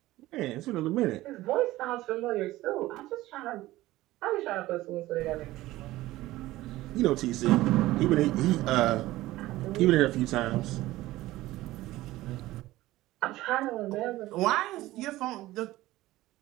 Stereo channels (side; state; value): left; quieter; 17.0 dB